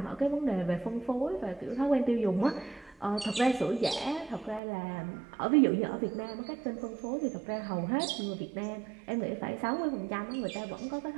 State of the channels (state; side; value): drops out; left; at 4.6 s